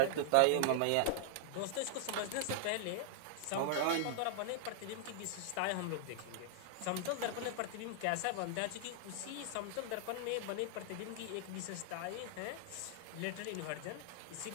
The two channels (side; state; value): both; different; correlation -0.01